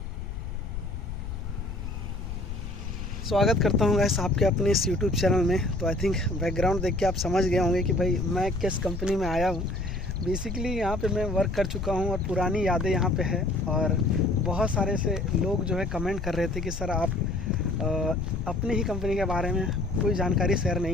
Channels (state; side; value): noise; left; rumble, 6 dB below the sound